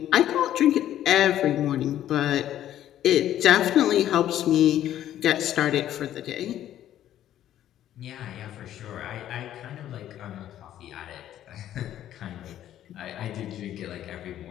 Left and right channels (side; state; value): right; quieter; 11.9 dB